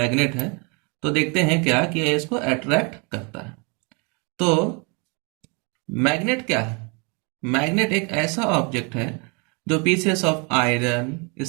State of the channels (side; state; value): left; quieter; 32.6 dB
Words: है। तो देखते हैं क्या कि ये इसको अट्रैक्ट करता है। तो मैग्नेट क्या है? मैग्नेट एक ऐसा ऑब्जेक्ट है जो पीसेस ऑफ आयरन,